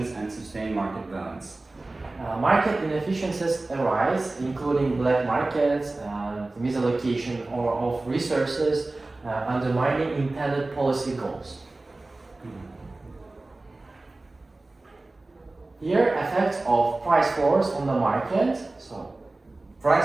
and sustain market balance. Market inefficiencies arise, including black markets and misallocation of resources, undermining intended policy goals. Here, effects of price floors on the market. So,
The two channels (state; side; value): quieter; left; 3.0 dB